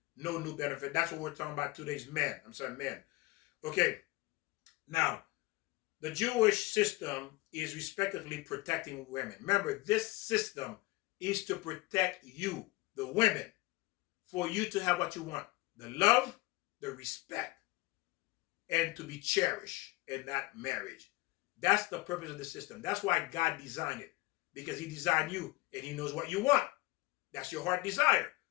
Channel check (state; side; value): quieter; right; 21.3 dB